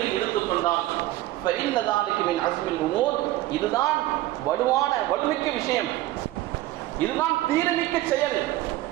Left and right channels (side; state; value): left; quieter; 16.3 dB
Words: எடுத்துக்கொண்டால் ஃபஇன்ன ஸாலிக மின் அஸ்மில் உமூர், இதுதான் வலுமிக்க விஷயம், இதுதான் தீரமிக்க செயல்